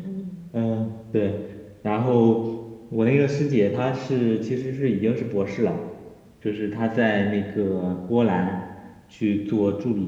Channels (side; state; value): both; identical; correlation 1.00